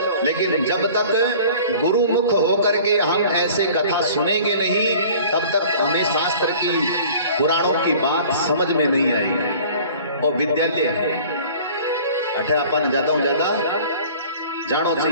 लेकिन जब तक गुरु मुख होकर के हम ऐसे कथा सुनेंगे नहीं, तब तक हमें शास्त्र की, पुराणों की बात समझ में नहीं आई। और विद्यालय है, अठे अपन ज्यादा ज्यादा जानो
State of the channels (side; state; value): both; inverted; correlation -0.47